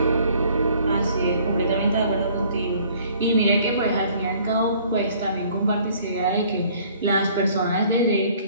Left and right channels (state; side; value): inverted; both; correlation -0.57